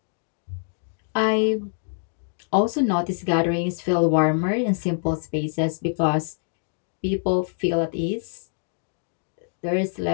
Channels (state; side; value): silent; right; digital silence